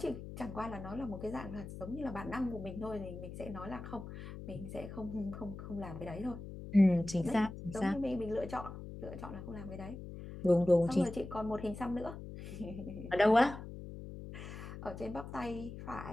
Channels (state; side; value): noise; left; hum, 10 dB below the sound